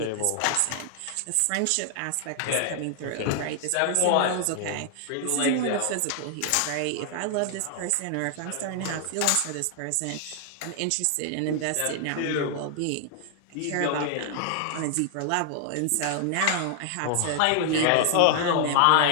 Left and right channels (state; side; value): different; both; correlation 0.00